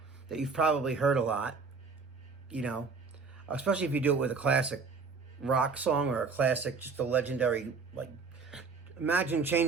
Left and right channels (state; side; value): quieter; left; 4.7 dB